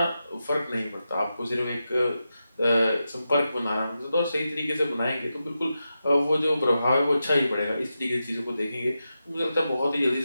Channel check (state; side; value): inverted; both; correlation -0.89